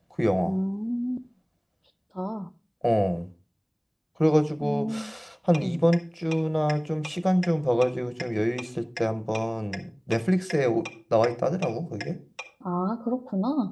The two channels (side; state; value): both; identical; correlation 1.00